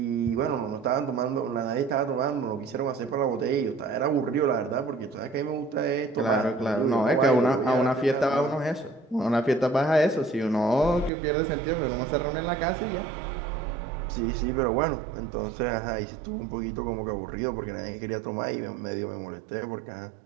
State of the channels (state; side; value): drops out; left; at 11.1 s